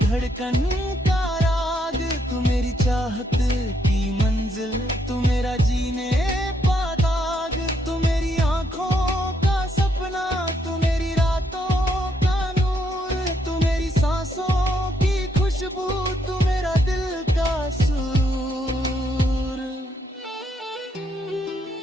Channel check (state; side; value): normal; both; correlation 0.74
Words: का राग। तू मेरी चाहत की मंजिल। तू मेरा जीने का दाग। तू मेरी आंखों का सपना। तू मेरी रातों का नूर। तू मेरी सांसों की खुशबू। तू मेरा दिल का सुरूर।